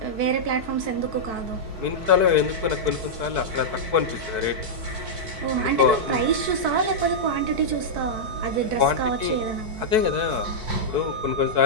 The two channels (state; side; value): late; left; 4.6 ms